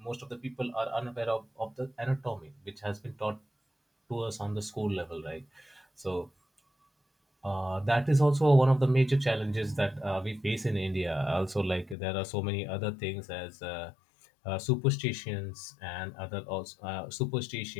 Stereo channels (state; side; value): drops out; right; at 12.0 s